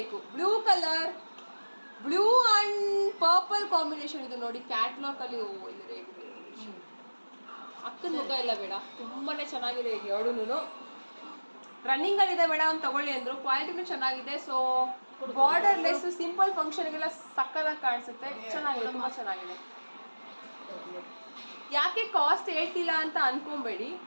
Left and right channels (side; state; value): both; inverted; correlation -1.00